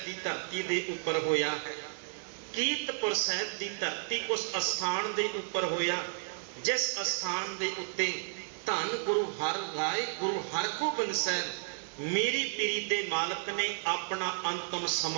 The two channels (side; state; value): left; silent; digital silence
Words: की धरती के उपर होया है। कीरतपुर साहब की धरती उस अस्थान के उपर होया जिस अस्थान के उत्ते धन गुरु हर राय गुरु हरगोबिंद साहब मेरी पीरी के मालक ने अपना अंतिम